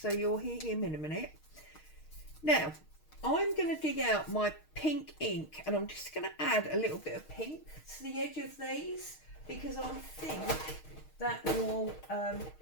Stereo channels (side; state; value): right; late; 6.5 ms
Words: you'll hear him in a minute. Now I'm going to dig out my pink ink, and I'm just going to add a little bit of pink to the edge of these, because I think that will